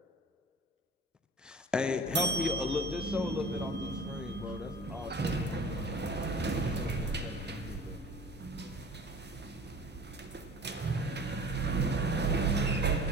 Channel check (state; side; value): normal; both; correlation 0.42